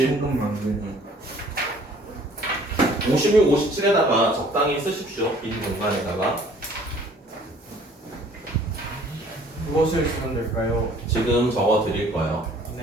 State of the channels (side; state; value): both; normal; correlation 0.55